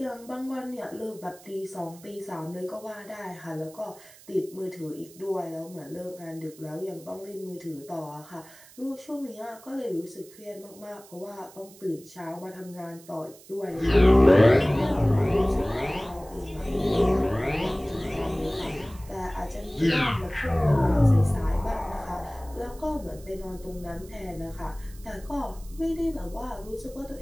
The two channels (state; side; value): noise; right; hiss, 22 dB below the sound